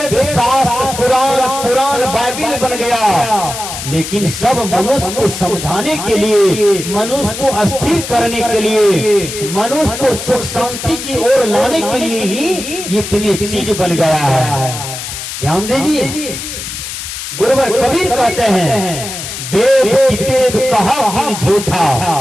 शास्त्र पुराण बाइबिल बन गया। लेकिन सब मनुष्य को समझाने के लिए, मनुष्य को अस्थिर करने के लिए, मनुष्य को सुख शांति की ओर लाने के लिए ही इतनी चीज बन गया है। ध्यान दीजिए, गुरुवर कबीर कहते हैं वेद कितेब कहा भी झूठा,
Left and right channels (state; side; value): noise; left; hiss, 8 dB below the sound